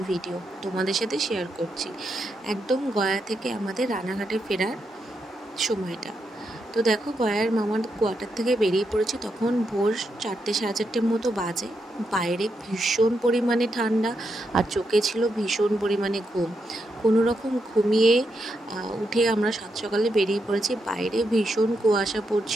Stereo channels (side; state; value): both; normal; correlation 0.83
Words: ভিডিও তোমাদের সাথে শেয়ার করছি। একদম গয়া থেকে আমাদের রানাঘাটে ফেরার সময়টা। তো দেখো, গয়ার মামার কোয়ার্টার থেকে বেরিয়ে পড়েছি, তখন ভোর 4টে সাড়ে 4টের মতো বাজে। বাইরে ভীষণ পরিমাণে ঠান্ডা আর চোখে ছিল ভীষণ পরিমাণে ঘুম। কোনো রকম ঘুমিয়ে উঠে আমরা সাত সকালে বেরিয়ে পড়েছি। বাইরে ভীষণ কুয়াশা